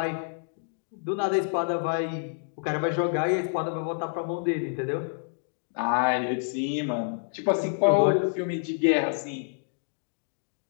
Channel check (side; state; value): right; silent; digital silence